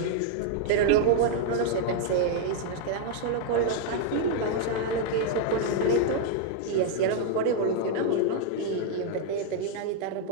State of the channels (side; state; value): both; different; correlation -0.01